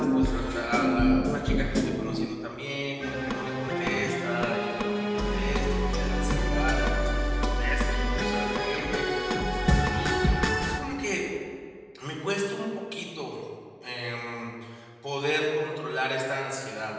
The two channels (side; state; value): both; identical; correlation 1.00